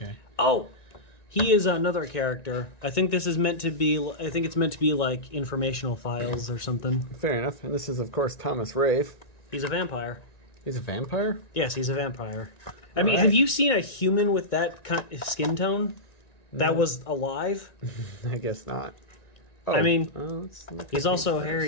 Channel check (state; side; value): late; right; 1.9 ms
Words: Oh! He is another character. I think this is meant to be... I think it's meant to be like informational files or something. Fair enough. And this is, of course, Thomas Raith. He's a vampire. He's a vampire? Yes, he's a vampire. I mean, have you seen a human with that skin tone that was alive? I guess not. Oh, I mean, let's look he's at also